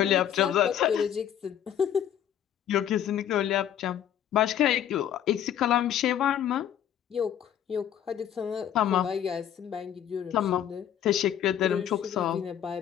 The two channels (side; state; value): right; quieter; 10.1 dB